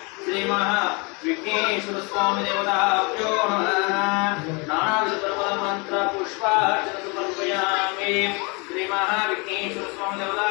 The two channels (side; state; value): right; quieter; 30.3 dB